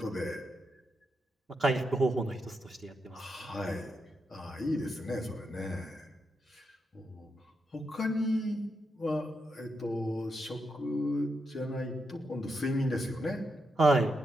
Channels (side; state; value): both; normal; correlation 0.84